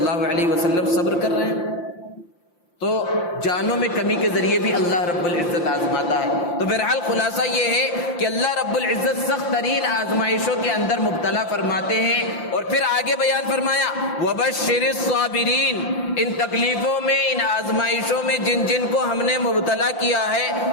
علیہ وسلم صبر کر رہے ہیں۔ تو جانوں میں کمی کے ذریعے بھی اللہ رب العزت آزماتا ہے۔ تو بہرحال خلاصہ یہ ہے کہ اللہ رب العزت سخت ترین آزمائشوں کے اندر مبتلا فرماتے ہیں، اور پھر آگے بیان فرمایا وَبَشِّرِ الصَّابِرِينَ، ان تکلیفوں میں، ان آزمائشوں میں جن کو ہم نے مبتلا کیا ہے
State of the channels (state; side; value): late; right; 5.8 ms